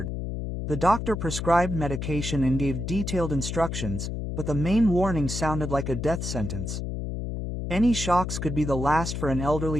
The doctor prescribed medication and gave detailed instructions, but the main warning sounded like a death sentence. Any shocks could be the last for an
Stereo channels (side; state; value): left; noise; hum, 4 dB below the sound